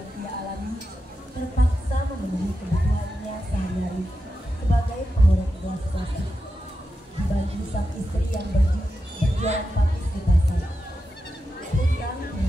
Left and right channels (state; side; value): normal; both; correlation 0.89